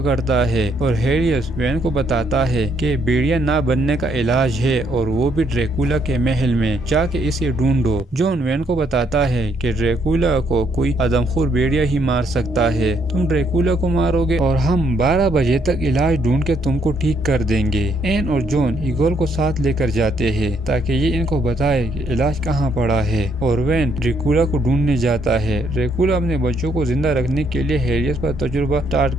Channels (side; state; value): both; normal; correlation 0.71